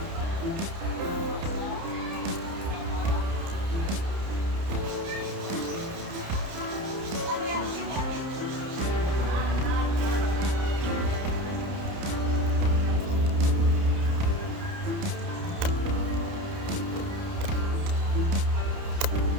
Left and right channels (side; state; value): left; late; 30 ms